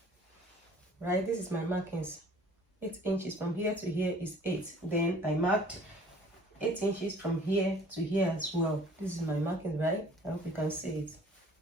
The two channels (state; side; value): normal; both; correlation 0.52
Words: right, this is my markings. 8 inches from here to here is 8. Then I marked 8 inches from here to here as well. This is my marking, right? I hope you can see it